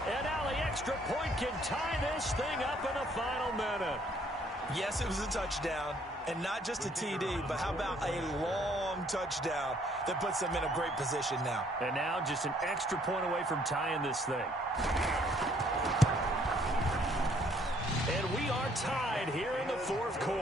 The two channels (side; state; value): both; normal; correlation 0.64